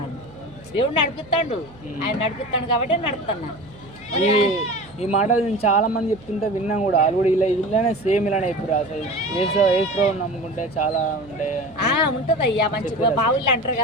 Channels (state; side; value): noise; right; hum, 23 dB below the sound